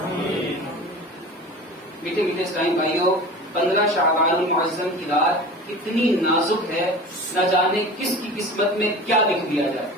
میٹھے میٹھے اسلام بھائیوں، 15 شعبان المعظم کی رات اتنی نازک ہے، نہ جانے کس کی قسمت میں کیا لکھ دیا جائے.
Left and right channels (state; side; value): normal; both; correlation 0.35